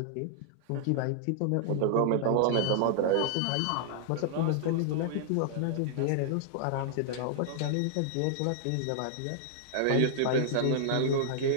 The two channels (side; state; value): both; different; correlation -0.01